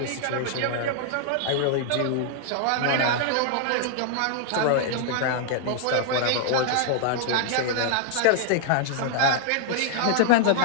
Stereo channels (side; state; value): both; different; correlation -0.01